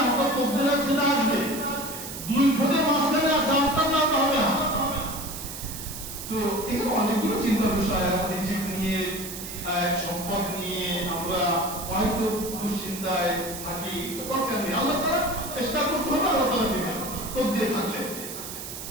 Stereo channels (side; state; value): right; noise; hiss, 9 dB below the sound